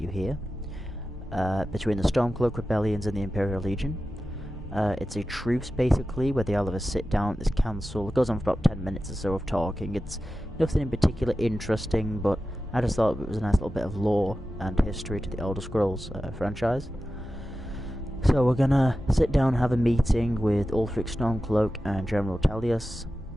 here, between the Stormcloak Rebellions and the Imperial Legion. It's a truce, basically, where they all have a sit down at this council. It goes on for about 10 minutes or so of talking. It's nothing in particular interesting, but I just thought it was a nice little bit of lore and history to the Elder Scrolls franchise. So we're gonna sit down and have a meeting with Ulfric Stormcloak and General Talius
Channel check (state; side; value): normal; both; correlation 0.93